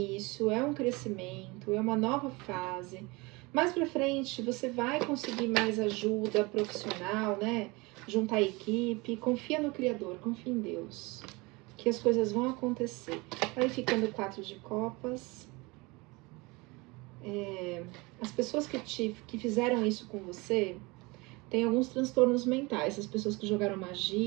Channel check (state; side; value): quieter; left; 25.0 dB